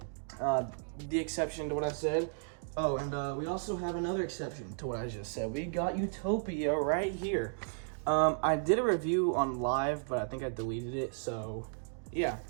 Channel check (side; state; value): left; silent; digital silence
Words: the exception to what I said. Oh, and we also have another exception to what I just said. We got Utopia right here. I did a review on live, but I think I deleted it, so yeah.